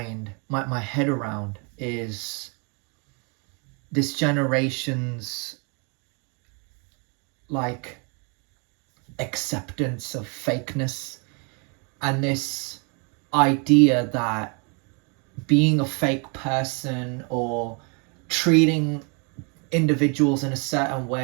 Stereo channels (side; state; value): left; quieter; 35.3 dB